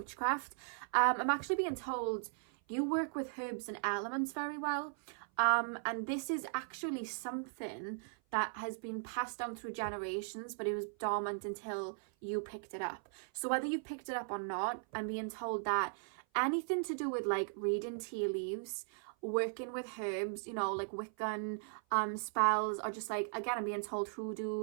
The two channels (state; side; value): silent; left; 52 dB below the other